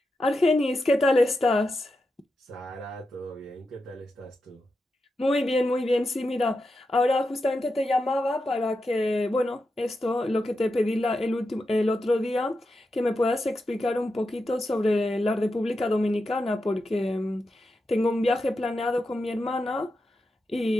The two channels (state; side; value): normal; both; correlation 0.88